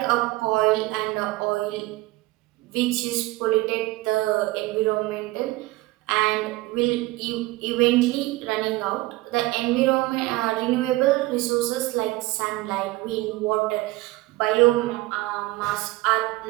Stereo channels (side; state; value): left; quieter; 19.7 dB